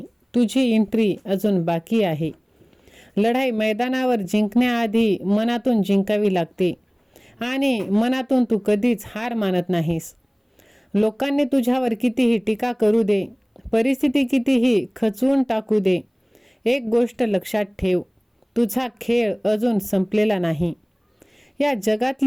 तुझी एंट्री अजून बाकी आहे. लढाई मैदानावर जिंकण्याआधी मनातून जिंकावी लागते आणि मनातून तू कधीच हार मानत नाहीस. लोकांनी तुझ्यावर कितीही टीका करू दे, परिस्थिती कितीही खचवून टाकू दे, एक गोष्ट लक्षात ठेव, तुझा खेळ अजून संपलेला नाही. या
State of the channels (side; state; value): both; identical; correlation 1.00